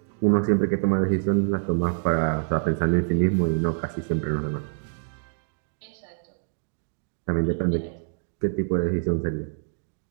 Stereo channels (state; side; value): silent; left; digital silence